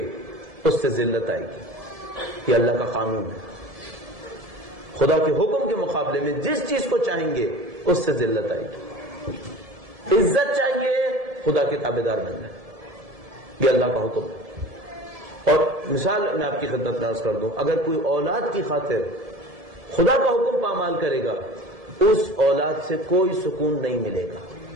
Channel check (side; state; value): left; late; 1.7 ms